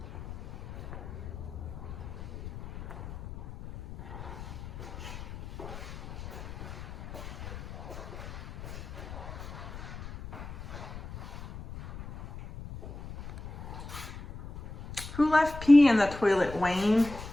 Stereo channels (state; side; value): noise; left; rumble, 11 dB below the sound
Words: Who left pee in the toilet, Wayne?